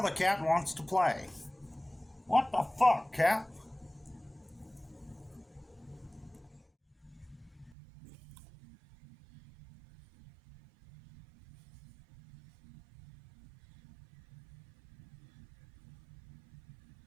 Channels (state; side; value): drops out; left; at 7.8 s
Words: the cat wants to play. What the fuck, cat?